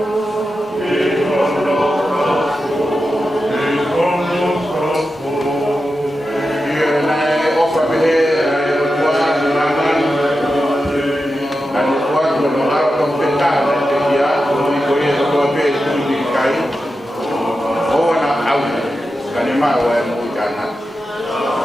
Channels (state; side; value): normal; both; correlation 0.90